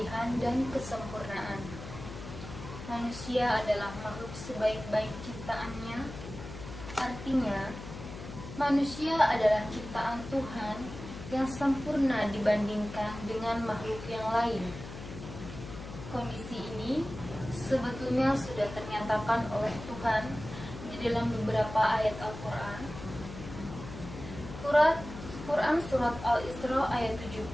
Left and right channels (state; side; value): noise; left; hum, 11 dB below the sound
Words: dan kesempurnaan. Manusia adalah makhluk sebaik-baik ciptaannya, artinya manusia adalah ciptaan Tuhan yang sempurna dibandingkan dengan makhluk yang lain. Kondisi ini sebetulnya sudah ternyatakan oleh Tuhan di dalam beberapa ayat Al-Quran. Quran Surat Al-Isra ayat